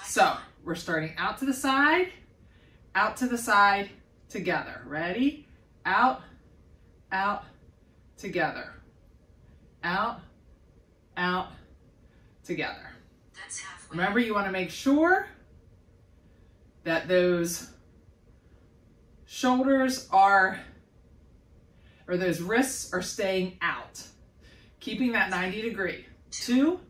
So we're starting out to the side, together. Ready? Out, out, together. Out, out, together. That's halfway. Remember, you want to make sure that those shoulders are, or those wrists are staying out. Keeping that 90-degree. 2,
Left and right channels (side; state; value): both; identical; correlation 1.00